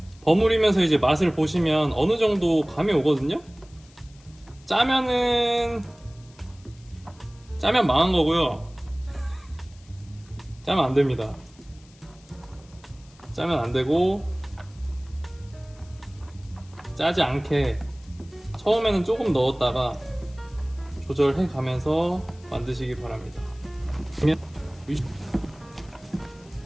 이제 맛을 보시면 어느 정도 감이 오거든요. 짜면 망한 거고요. 짜면 안 됩니다. 짜면 안 되고 짜지 않게 처음에는 조금 넣었다가 조절해 가면서 만드시기 바랍니다.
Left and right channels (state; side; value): noise; left; hiss, 27 dB below the sound